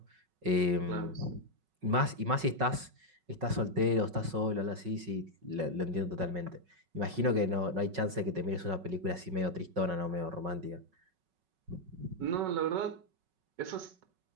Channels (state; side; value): late; left; 5.4 ms